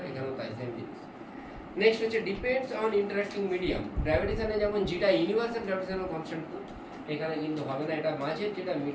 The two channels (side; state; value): both; identical; correlation 1.00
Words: এখানেও তাই সেম জিনিস। নেক্সট হচ্ছে ডিপেন্ডস অন ইন্টারেক্টিং মিডিয়াম। গ্র্যাভিটেশনে যেমন যেটা ইউনিভার্সাল গ্র্যাভিটেশনাল কনস্ট্যান্ট, এখানে কিন্তু হবে না, এটা মাঝের যেটা